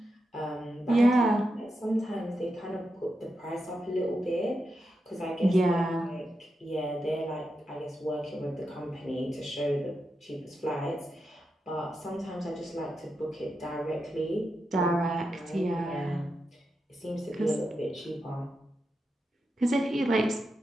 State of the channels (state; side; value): normal; both; correlation 0.87